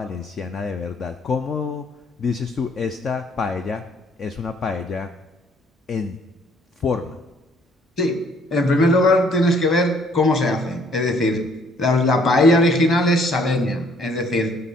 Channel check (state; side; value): normal; both; correlation 0.62